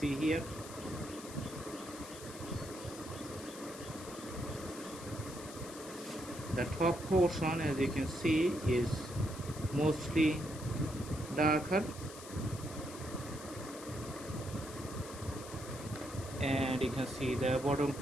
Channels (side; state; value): left; noise; hiss, 14 dB below the sound